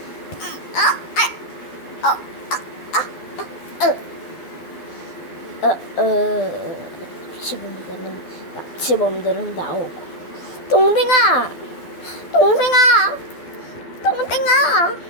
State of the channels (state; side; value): late; right; 12 ms